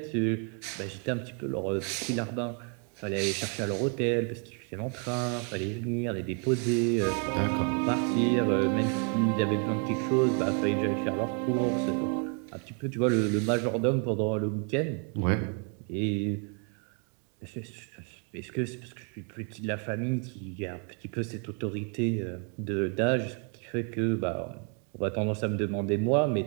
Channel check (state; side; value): quieter; left; 39.3 dB